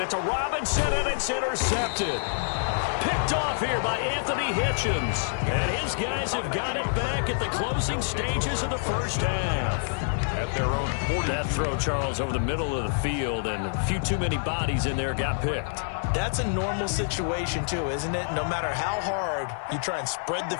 it to Robinson, and it's intercepted. Picked off here by Anthony Hitchens. And his guys have got it back at the closing stages of the first half. At their own 40. That throw, Charles, over the middle of the field, and a few too many bodies in there got picked. That's a normal situation, too, isn't it? No matter how hard you try and spread the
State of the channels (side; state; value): right; silent; digital silence